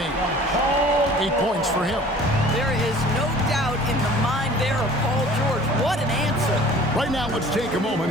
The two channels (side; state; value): both; normal; correlation 0.48